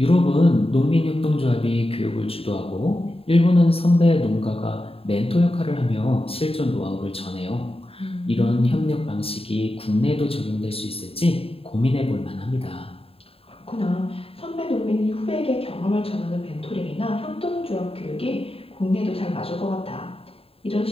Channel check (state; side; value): late; right; 0.27 ms